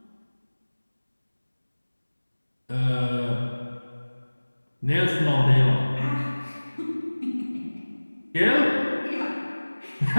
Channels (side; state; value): both; inverted; correlation -1.00